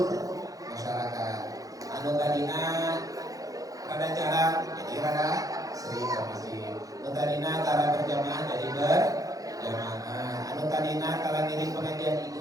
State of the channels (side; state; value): left; late; 0.17 ms